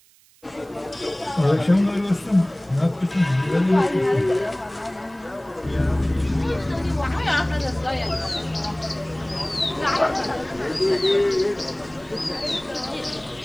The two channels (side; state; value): right; noise; hiss, 30 dB below the sound